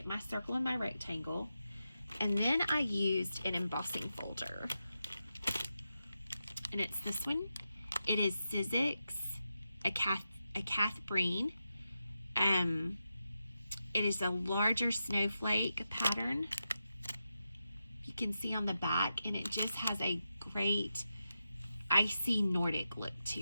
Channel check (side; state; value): both; inverted; correlation -0.89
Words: my circle and my rectangle, and then I used an embossing folder, and it's this one. It is Sizzix, a Cath Breen. It is a larger snowflake pattern. You can see on the back, and it just has a great icy Nordic look to